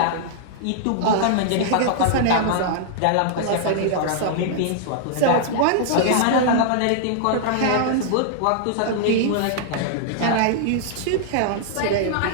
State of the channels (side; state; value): both; different; correlation -0.01